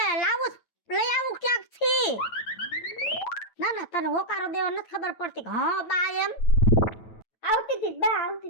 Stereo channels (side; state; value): right; late; 9.1 ms